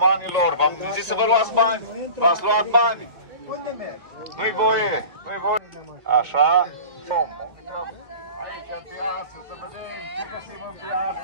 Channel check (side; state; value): left; late; 1.8 ms